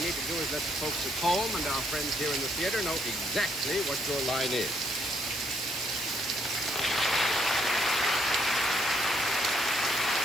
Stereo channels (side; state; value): both; normal; correlation 0.71